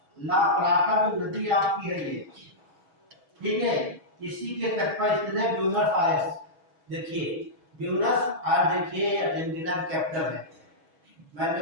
ला प्लाटा जो नदी आपकी है ये, ठीक है। इसी के तट पर स्थित है ब्यूनस आयर्स। देखिए ब्यूनस आयर्स, देखिए अर्जेंटीना का कैपिटल है। मैंने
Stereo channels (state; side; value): late; left; 6.2 ms